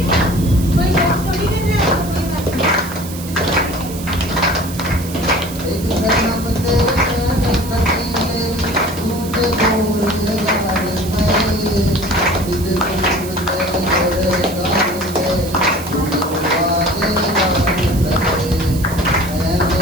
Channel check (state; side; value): noise; right; hiss, 13 dB below the sound